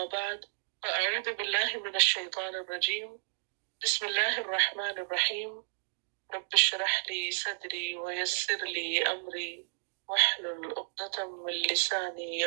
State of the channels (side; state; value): left; silent; digital silence